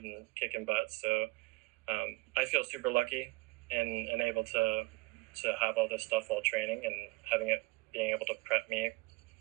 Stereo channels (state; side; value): quieter; left; 25.1 dB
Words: and kicking butt. So I feel super lucky and able to have all this stuff while training and being able to prep me,